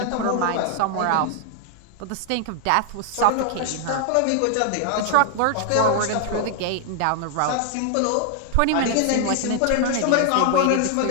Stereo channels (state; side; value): different; both; correlation 0.00